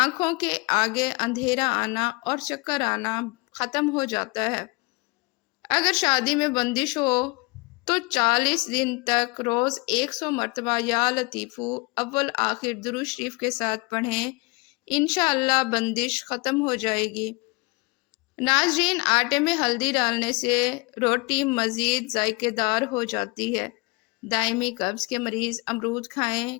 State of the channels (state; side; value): quieter; right; 27.4 dB